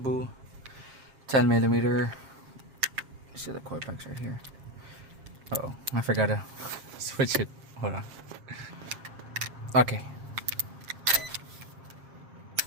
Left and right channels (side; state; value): left; late; 7.4 ms